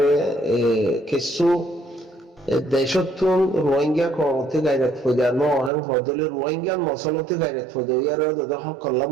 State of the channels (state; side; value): drops out; left; at 5.7 s